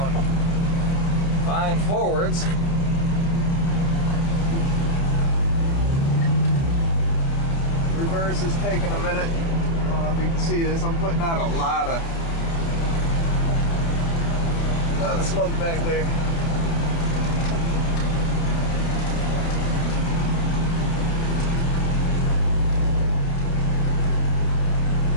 fine forwards. Reverse is taking a minute. I don't know if you can see this. I'm putting out a lot of smoke back there.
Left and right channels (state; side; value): late; right; 30 ms